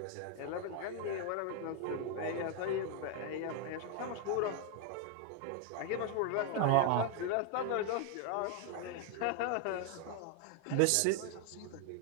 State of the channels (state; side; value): different; both; correlation 0.01